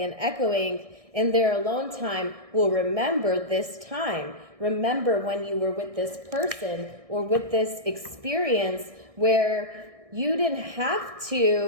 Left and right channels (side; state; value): left; late; 1.6 ms